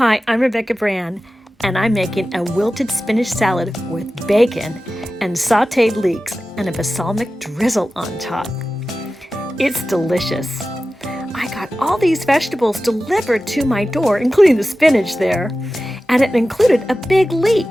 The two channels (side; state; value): both; normal; correlation 0.95